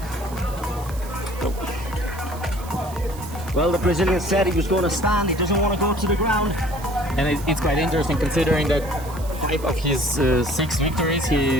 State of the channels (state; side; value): noise; right; hiss, 18 dB below the sound